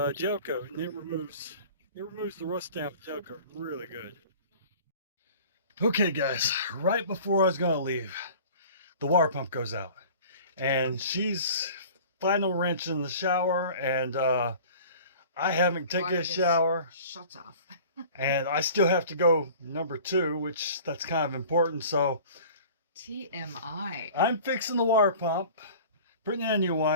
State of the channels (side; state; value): both; inverted; correlation -0.44